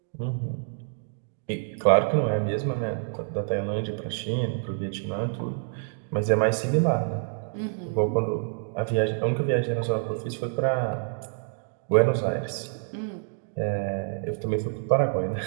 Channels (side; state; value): left; silent; digital silence